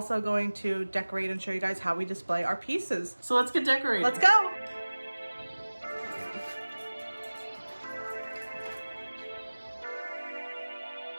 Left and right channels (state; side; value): inverted; both; correlation -1.00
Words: going to decorate and show you guys how we display our pieces. So let's get decorated. Let's go!